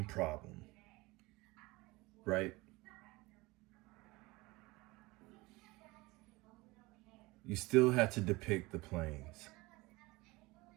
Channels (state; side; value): quieter; left; 22.3 dB